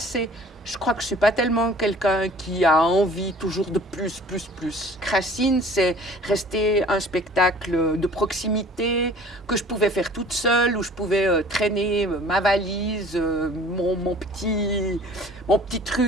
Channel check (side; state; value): both; normal; correlation 0.49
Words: Je crois que je suis pas tellement quelqu'un qui a envie toujours de plus, plus, plus. Racine, c'est rester un spectacle de proximité que je pouvais faire toute seule, où je pouvais traîner ma valise, mon petit